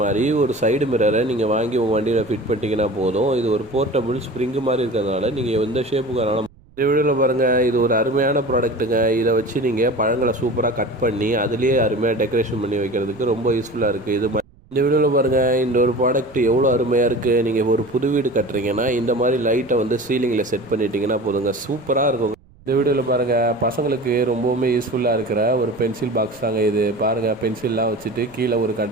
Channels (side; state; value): right; noise; rumble, 27 dB below the sound